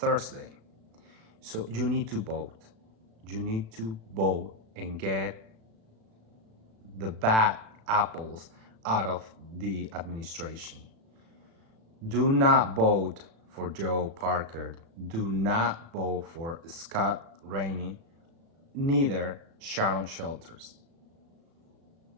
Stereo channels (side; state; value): left; late; 36 ms